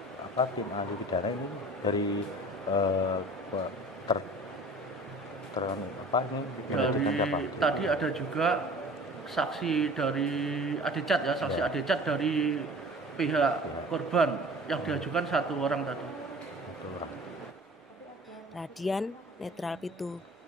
tim ahli pidana ini dari tadi ada juga saksi dari Adecat ya, saksi Adecat dari pihak korban yang diajukan 1 orang tadi. Radian Netral Pitu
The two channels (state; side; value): normal; both; correlation 0.44